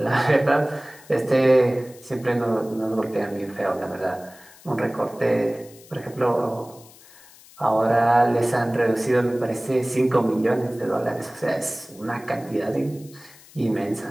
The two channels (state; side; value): noise; left; hiss, 23 dB below the sound